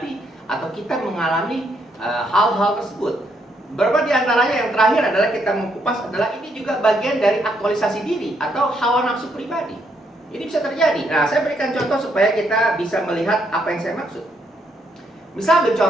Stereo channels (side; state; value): both; normal; correlation 0.75